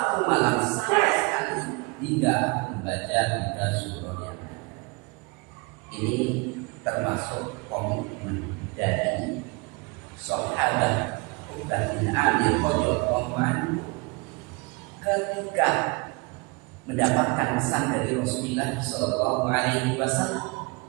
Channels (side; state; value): left; quieter; 28.4 dB